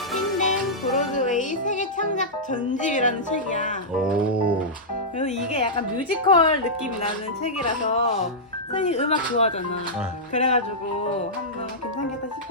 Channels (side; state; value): both; normal; correlation -0.12